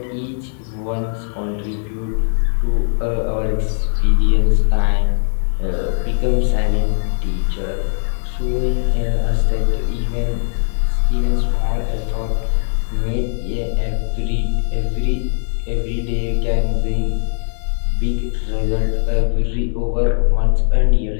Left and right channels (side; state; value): right; silent; 64 dB below the other